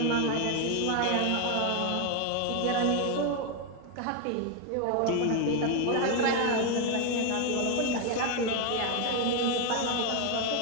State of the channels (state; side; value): different; both; correlation 0.01